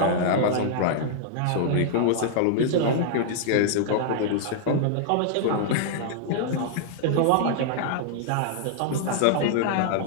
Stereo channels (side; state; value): both; different; correlation -0.01